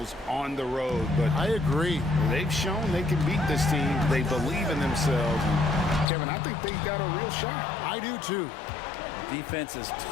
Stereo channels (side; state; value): right; drops out; at 6.1 s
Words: on the road. But I agree. They've shown they can beat this team. They believe in themselves. And Kevin, I think they've got a real shot. I do, too. Defense as